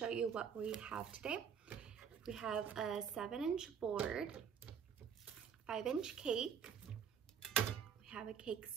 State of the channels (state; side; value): quieter; left; 7.4 dB